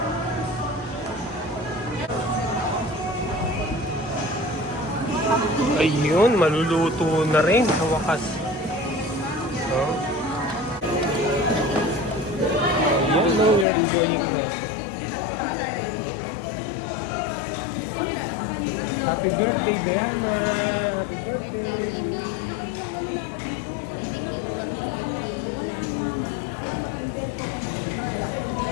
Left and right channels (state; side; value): drops out; right; at 13.7 s